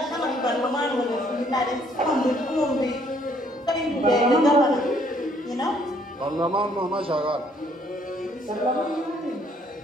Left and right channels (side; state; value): both; normal; correlation 0.65